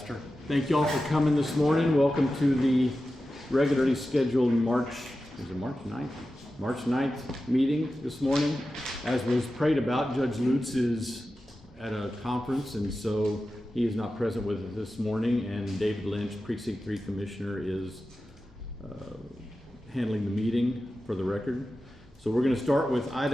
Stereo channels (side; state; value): both; normal; correlation 0.93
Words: Thank you all for coming this morning. Welcome to the regularly scheduled March 9th meeting this morning. As was prayed about, Judge Lutz is at a conference, and so he is not present with us this morning, and David Lynch, Precinct 3 Commissioner, is handling the meeting for the record. So we're going to start with